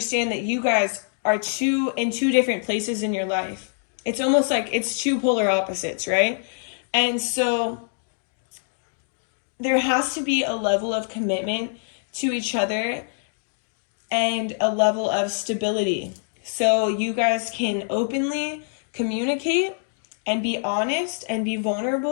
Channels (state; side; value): silent; right; digital silence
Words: that you guys are in two different places in your life. It's almost like it's two polar opposites, right? And so there has to be a level of commitment to each other and a level of stability. So you guys can openly communicate and be honest and be